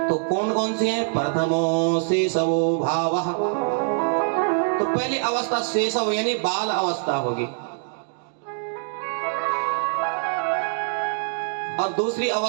तो कौन कौन सी हैं? प्रथमो शेषवो भावः। तो पहली अवस्था शेषव यानी बाल अवस्था होगी, और दूसरी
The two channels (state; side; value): silent; left; digital silence